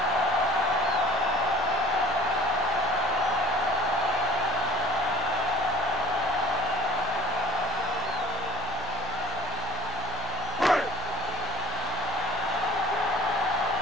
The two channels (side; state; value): both; normal; correlation 0.48